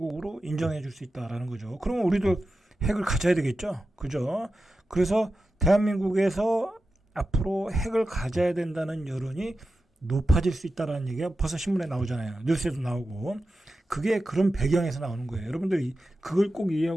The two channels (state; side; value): normal; both; correlation 0.92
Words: 인정해 줄 수 있다라는 거죠. 그러면 우리도 핵을 가져야 되겠죠? 그죠? 그래서 대한민국에서 앞으로 핵을 가져야 된다는 여론이 높아질 수 있다라는 얘기가 벌써 신문에 나오잖아요. 뉴스에도 나오고. 그게 그런 배경에서 나오는 거예요. 여러분들이 그걸 꼭